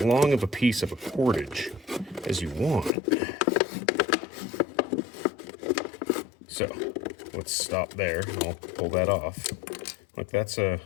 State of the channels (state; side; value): drops out; right; at 2.9 s